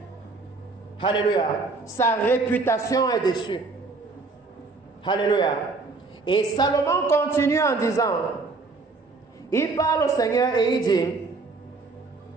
Alléluia. Sa réputation est dessus. Alléluia. Et Salomon continue en disant, il parle au Seigneur et il dit,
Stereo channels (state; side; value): quieter; left; 3.9 dB